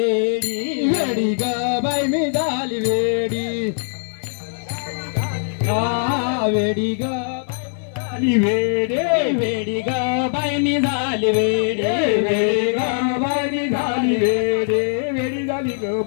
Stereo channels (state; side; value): silent; right; digital silence